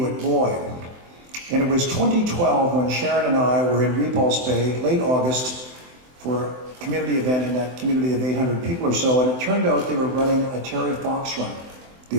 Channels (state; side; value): late; left; 24 ms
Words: Boy. And it was 2012 when Sharon and I were in Repulse Bay, late August, for a community event in that community of 800 people or so, and it turned out they were running a Terry Fox run, the